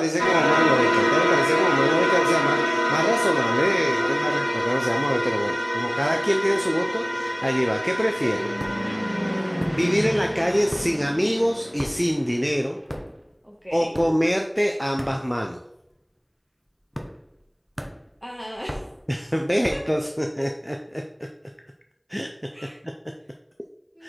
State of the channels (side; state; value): both; identical; correlation 1.00